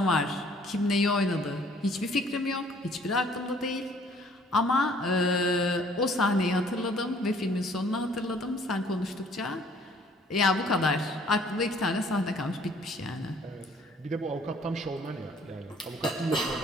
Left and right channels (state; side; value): normal; both; correlation 0.58